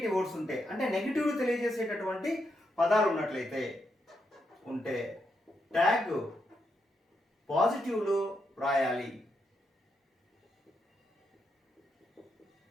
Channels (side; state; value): both; normal; correlation 0.82